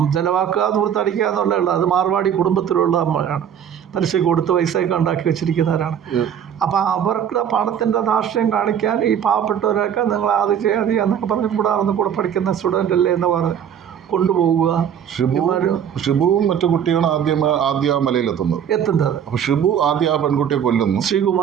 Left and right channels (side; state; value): left; quieter; 8.8 dB